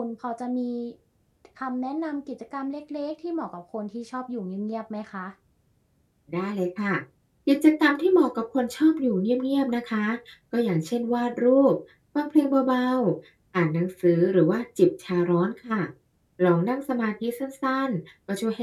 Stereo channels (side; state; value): both; identical; correlation 1.00